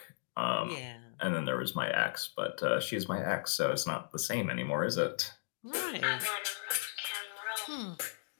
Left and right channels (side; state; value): right; silent; digital silence